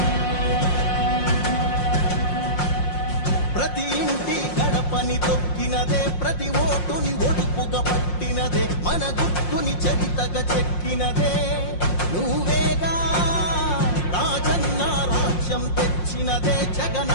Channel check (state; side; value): late; right; 5.6 ms